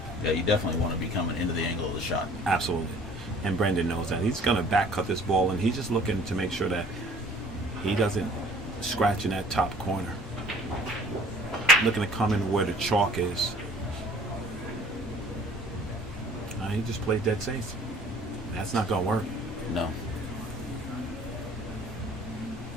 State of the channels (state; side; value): normal; both; correlation 0.52